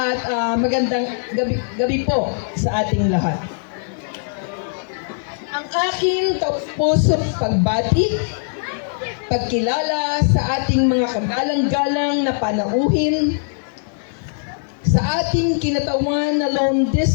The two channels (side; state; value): right; silent; 64 dB below the other